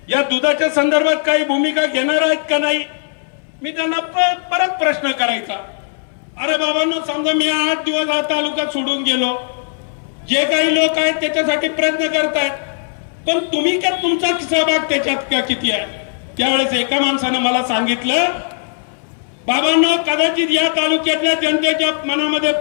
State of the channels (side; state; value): right; silent; 65 dB below the other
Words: या दुधाच्या संदर्भात काही भूमिका घेणार आहेत का नाही? मी त्यांना परत प्रश्न करायचा, अरे बाबांनो, समजा मी 8 दिवस हा तालुका सोडून गेलो, जे काही लोक आहेत त्याच्यासाठी प्रयत्न करतायत, पण तुम्ही काय, तुमचा सहभाग त्याच्यात किती आहे? त्यावेळेस एका माणसानं मला सांगितलं, बाबांनो, कदाचित या तालुक्यातल्या जनतेच्या मनामध्ये,